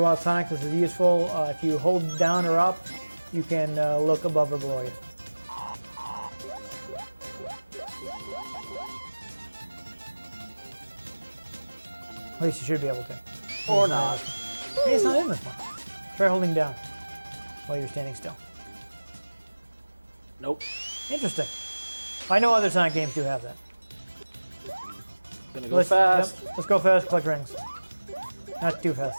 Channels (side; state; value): both; inverted; correlation -1.00